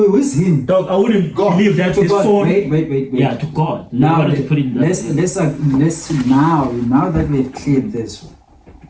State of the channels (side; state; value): both; identical; correlation 1.00